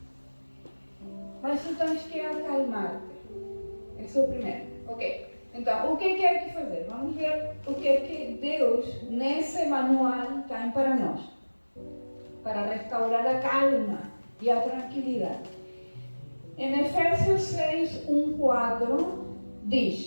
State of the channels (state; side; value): inverted; both; correlation -1.00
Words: Mas tu tens que acalmar-te. Esse é o primeiro. Ok. Então, o que é que fazer? Vamos ver o que é que Deus, nesse manual, tem para nós. Para restaurar a calma e a tranquilidade. Em Efésios 6, 1-4,